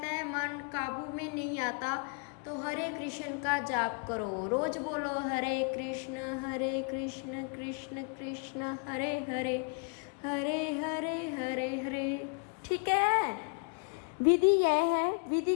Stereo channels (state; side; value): quieter; right; 37.3 dB